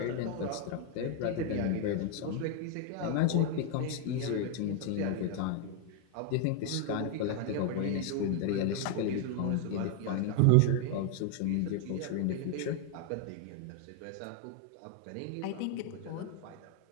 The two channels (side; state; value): both; different; correlation 0.01